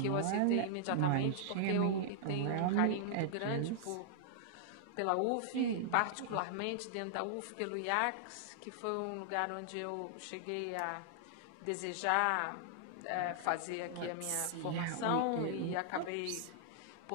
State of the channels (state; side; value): different; both; correlation -0.01